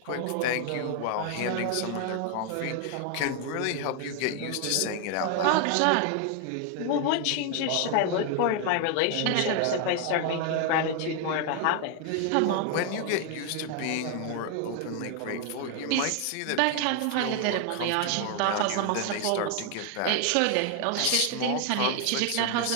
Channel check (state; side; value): different; both; correlation 0.01